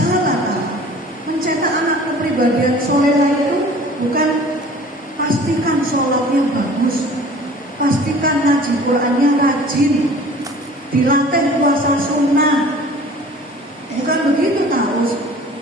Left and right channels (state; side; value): normal; both; correlation 0.46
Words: kan? Mencetak anak kepribadian solehah itu bukan pastikan sholatnya bagus, pastikan ngaji Qurannya rajin, dilatih puasa sunnah. Bukan begitu tahu.